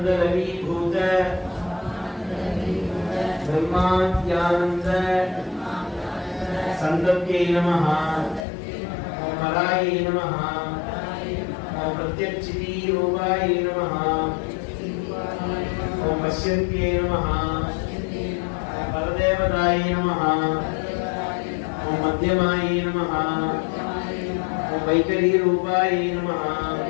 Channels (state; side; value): drops out; right; at 8.5 s